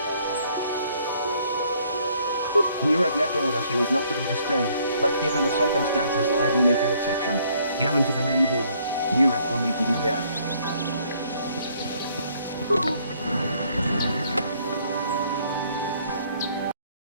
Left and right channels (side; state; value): both; inverted; correlation -0.65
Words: Nurek left orders he was not to be disturbed, but given the circumstances, I will make an exception. Go into the main hall. Nurek will meet with you there.